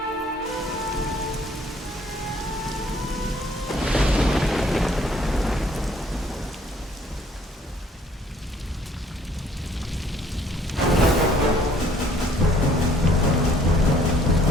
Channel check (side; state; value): both; normal; correlation 0.61